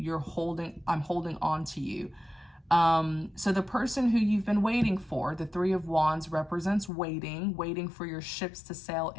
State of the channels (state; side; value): drops out; right; at 6.9 s